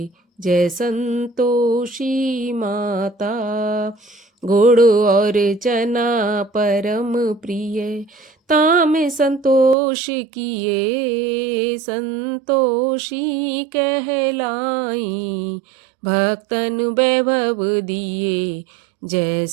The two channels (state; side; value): drops out; left; at 9.8 s